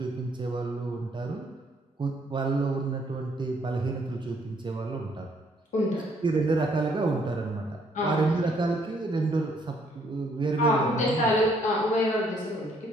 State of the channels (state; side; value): normal; both; correlation 0.67